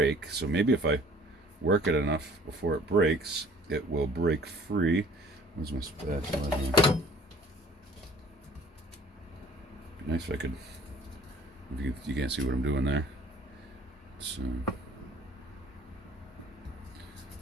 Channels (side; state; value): both; normal; correlation 0.52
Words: so maybe if I work it enough before it breaks, it will break free. Where's my spatula here? Be nice if I could. If you can't see what I'm doing there. So I'm